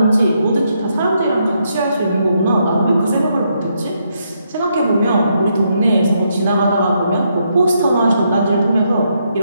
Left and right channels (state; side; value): inverted; both; correlation -0.77